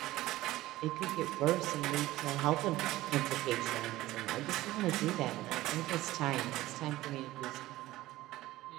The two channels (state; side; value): quieter; left; 16.7 dB